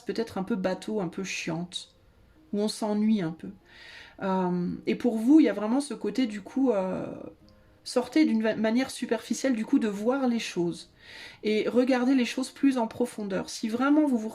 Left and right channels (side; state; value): both; identical; correlation 1.00